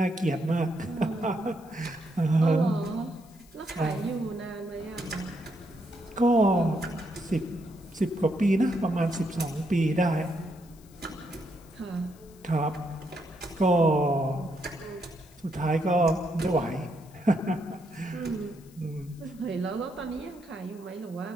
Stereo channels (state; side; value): noise; left; hiss, 27 dB below the sound